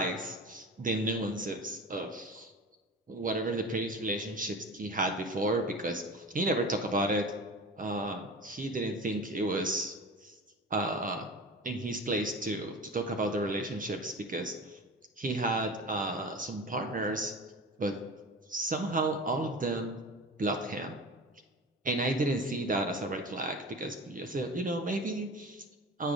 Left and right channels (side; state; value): both; normal; correlation 0.33